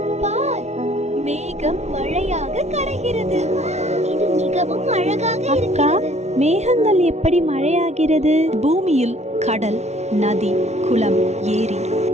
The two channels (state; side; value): late; left; 0.32 ms